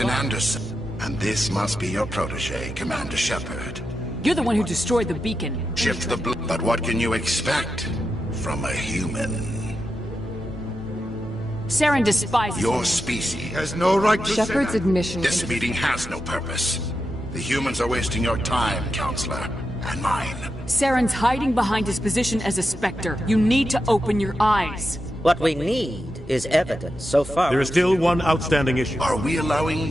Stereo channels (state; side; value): normal; both; correlation 0.88